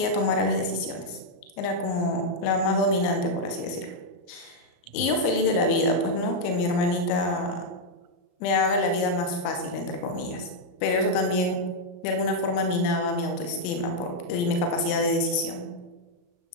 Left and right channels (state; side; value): late; right; 34 ms